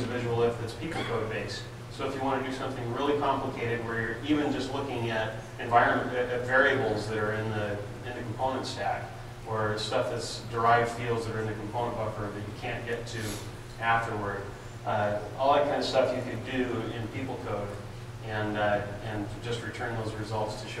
a visual if that's people code based. So if you want to do something really complicated where you're even just looking at variables that are in the component stack, or stuff that's derived fields that are in the component buffer that you can't get to afterward, all that kind of stuff you could do in people code and just return those results to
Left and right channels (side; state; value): both; identical; correlation 1.00